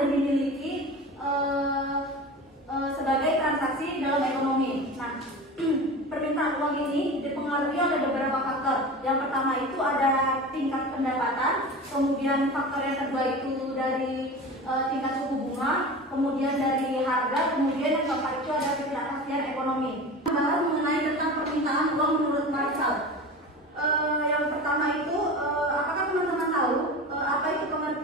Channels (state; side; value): normal; both; correlation 0.32